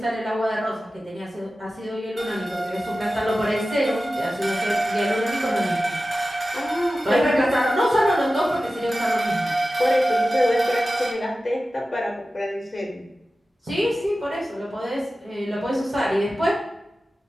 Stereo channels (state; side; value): normal; both; correlation 0.95